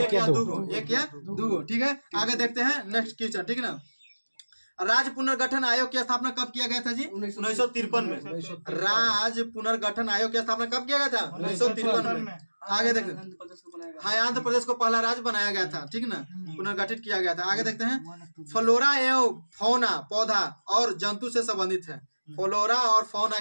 या 2 गो, ठीक है। आगे देखते हैं नेक्स्ट क्वेश्चन, ठीक है ना। राज्य पुनर्गठन आयोग की स्थापना कब किया गया था जी? 1953 में। राज्य पुनर्गठन आयोग की स्थापना कब किया गया था? 1953 में। आगे देखते हैं, हाँ, आंध्र प्रदेश को पहला राज्य बनाया गया था, ठीक ना, पुनर्गठित किया गया था। आगे देखते हैं, फ्लोरा एवं फौना पौधा और जंतु से संबंधित है। फ्लोरा और फौना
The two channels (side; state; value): both; inverted; correlation -1.00